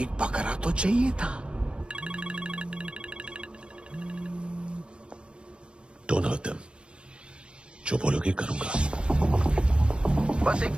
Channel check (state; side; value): late; left; 0.057 ms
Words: एक बकरा तो चाहिए था। Don't hurt them. जो बोलोगे करूंगा। बस एक